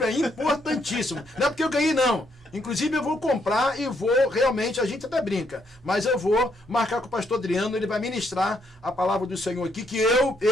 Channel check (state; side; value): normal; both; correlation 0.74